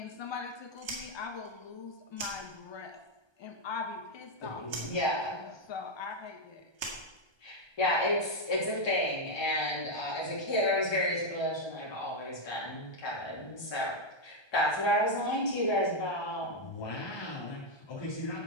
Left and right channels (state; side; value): late; right; 1.2 ms